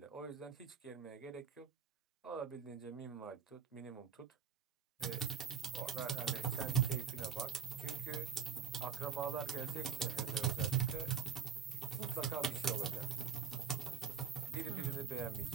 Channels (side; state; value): left; quieter; 6.7 dB